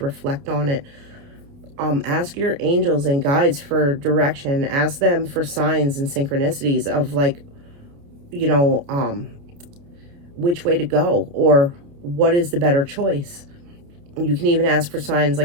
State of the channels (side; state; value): left; late; 28 ms